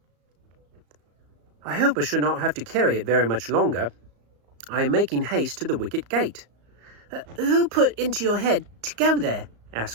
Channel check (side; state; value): left; late; 34 ms